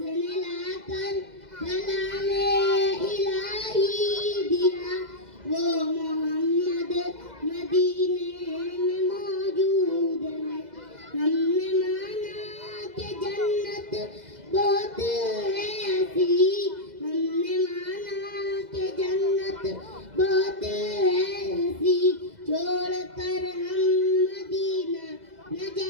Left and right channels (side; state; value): left; late; 2.0 ms